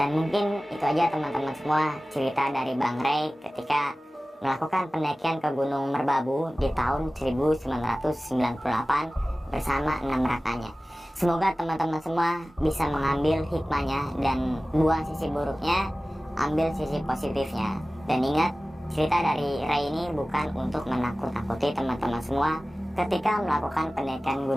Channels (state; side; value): normal; both; correlation 0.97